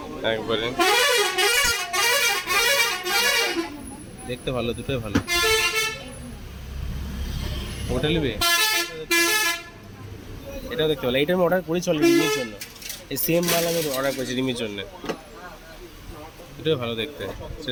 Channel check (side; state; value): both; identical; correlation 1.00